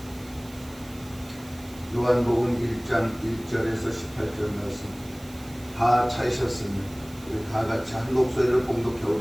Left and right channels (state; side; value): noise; right; hiss, 22 dB below the sound